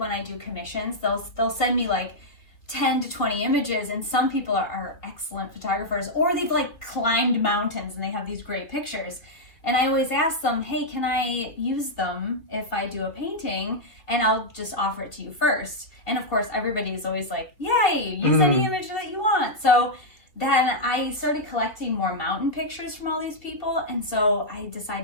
I do commissions. They'll send me like 10 to 20 images, and some people are excellent photographers, or they've like climbed mountains and they have these great pictures. And I always ask them, hey, can I use them if I do a painting? And I'll just offer it to you first. And of course, everybody is always like, yay, use any image that you want. So then I started collecting more mountain pictures from all these people, and so I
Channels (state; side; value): late; right; 3.0 ms